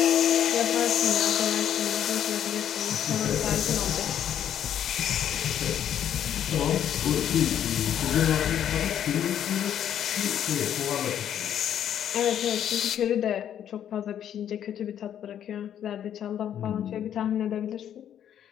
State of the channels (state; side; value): quieter; right; 9.9 dB